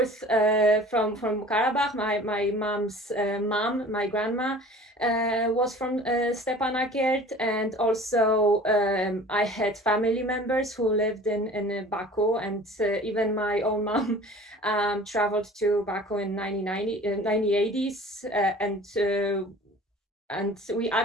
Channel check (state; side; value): normal; both; correlation 0.45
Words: from Karabakh. My mom's mom, my grandma, was from Stepanakert, and also I had family members who lived in Baku, and even my own mom traveled to Baku in 1980s, and